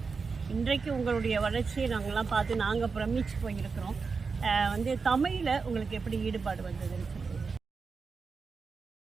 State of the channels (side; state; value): left; quieter; 4.9 dB